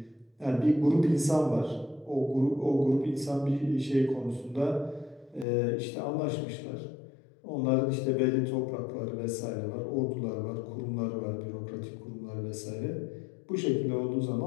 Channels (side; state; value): right; drops out; at 5.5 s